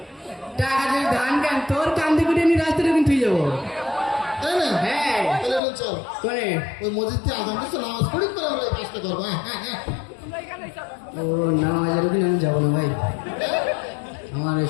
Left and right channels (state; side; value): drops out; right; at 5.6 s